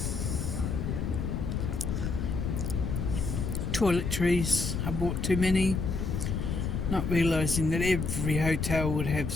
Toiletries, I bought too many, not realising that every hotel would have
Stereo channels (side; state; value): left; noise; rumble, 2 dB below the sound